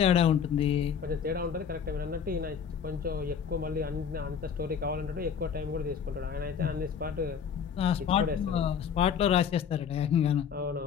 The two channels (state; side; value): quieter; right; 7.3 dB